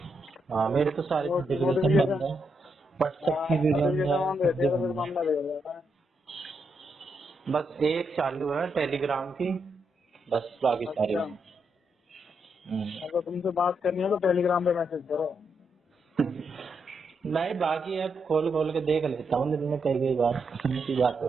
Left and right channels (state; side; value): normal; both; correlation 0.81